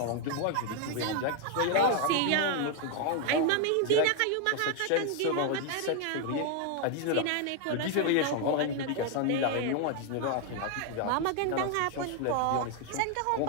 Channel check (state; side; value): different; both; correlation 0.01